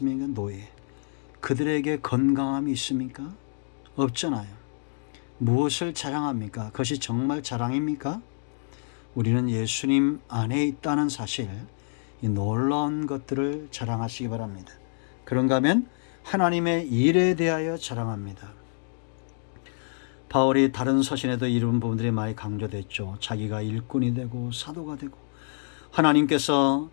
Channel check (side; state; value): right; silent; digital silence